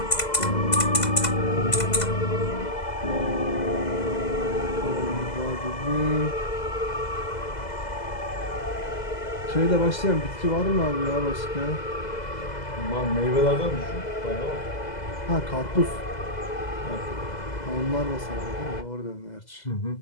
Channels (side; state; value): right; late; 2.0 ms